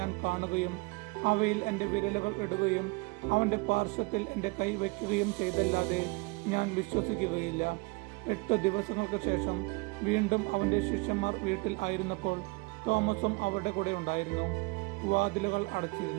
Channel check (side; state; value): left; quieter; 27.3 dB